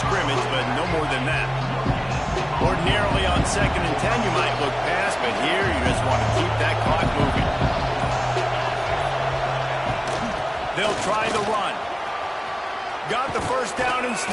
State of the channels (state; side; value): identical; both; correlation 1.00